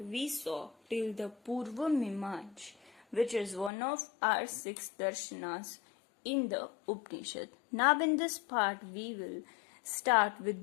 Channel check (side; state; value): right; drops out; at 3.7 s